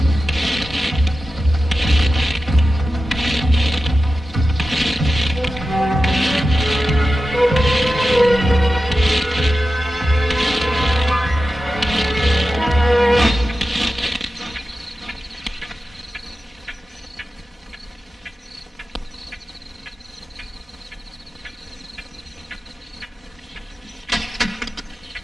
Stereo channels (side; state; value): both; normal; correlation 0.93